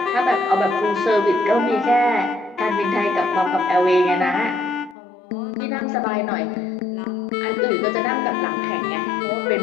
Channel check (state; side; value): drops out; right; at 5.0 s